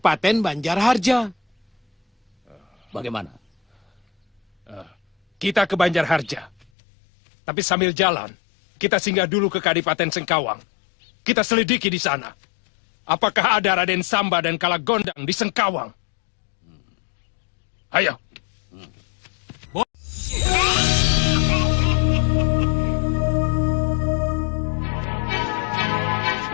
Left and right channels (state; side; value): drops out; right; at 6.7 s